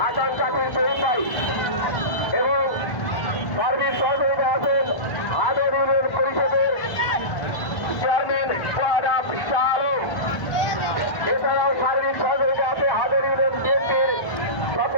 জাকির শহীদ ভাই এবং সার্বিক সহযোগিতা আছেন হাদর ইউনিয়ন পরিষদের চেয়ারম্যান সোহাব শাহ আলম। এছাড়াও সার্বিক সহযোগিতা আছে হাদর ইউনিয়ন বিএনপির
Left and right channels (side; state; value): right; late; 1.5 ms